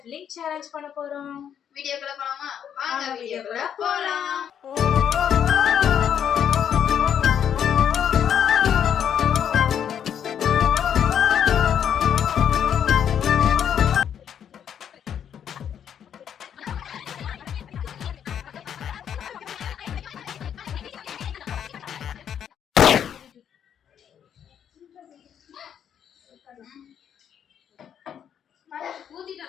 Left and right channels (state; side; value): quieter; right; 8.8 dB